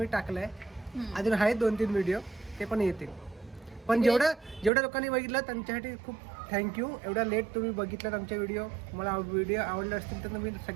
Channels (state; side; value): drops out; left; at 4.7 s